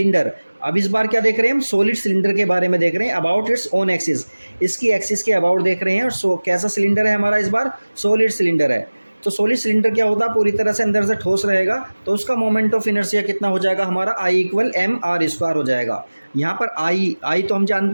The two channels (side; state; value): both; inverted; correlation -1.00